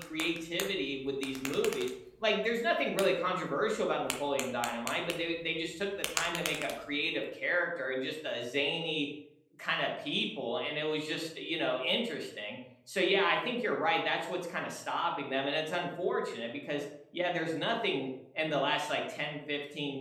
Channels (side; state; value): both; identical; correlation 1.00